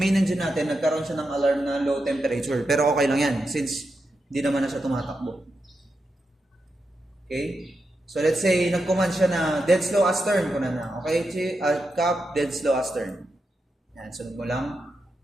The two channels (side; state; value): both; normal; correlation 0.87